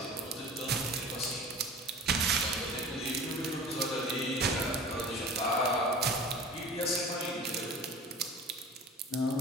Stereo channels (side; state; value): both; normal; correlation 0.39